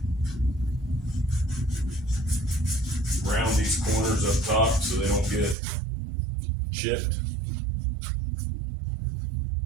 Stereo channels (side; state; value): left; drops out; at 5.6 s